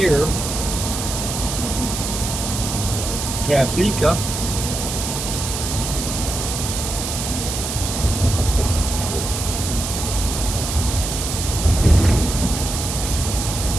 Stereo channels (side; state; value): right; noise; hiss, 4 dB below the sound